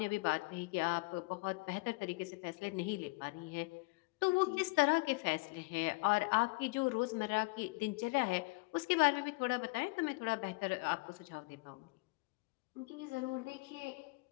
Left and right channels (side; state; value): right; quieter; 27.2 dB